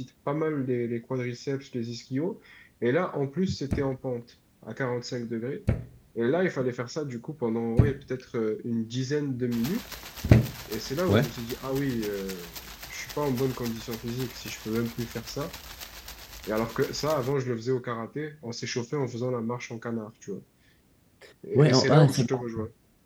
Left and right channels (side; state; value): both; identical; correlation 1.00